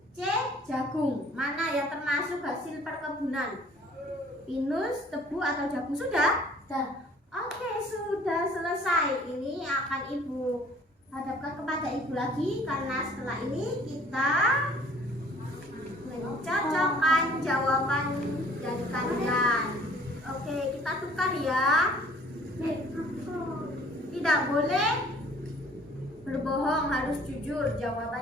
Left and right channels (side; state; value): both; normal; correlation 0.54